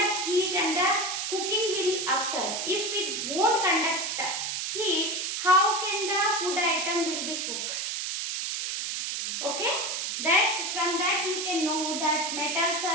heat and the cooking will occur. If it won't conduct heat, how can the food item will be cooked? Okay, that from that you can know that metals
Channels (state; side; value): noise; right; hiss, 2 dB below the sound